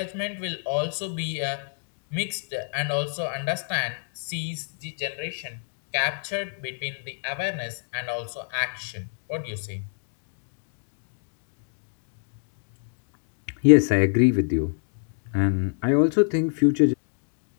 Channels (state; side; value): silent; right; digital silence